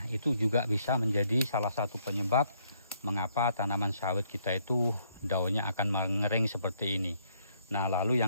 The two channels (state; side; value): inverted; both; correlation -0.70